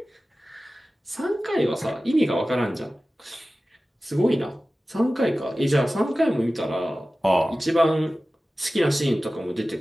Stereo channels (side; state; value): both; normal; correlation 0.96